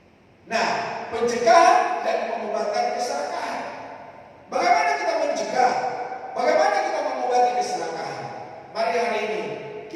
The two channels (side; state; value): both; identical; correlation 1.00